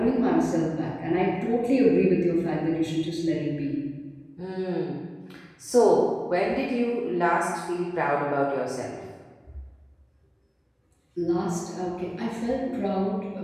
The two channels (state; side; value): identical; both; correlation 1.00